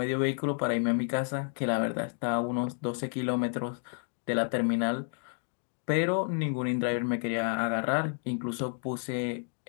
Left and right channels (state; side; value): silent; right; 56 dB below the other